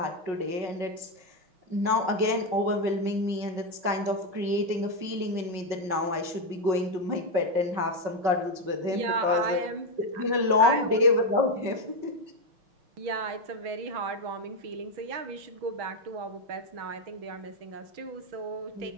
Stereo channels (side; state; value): left; late; 5.4 ms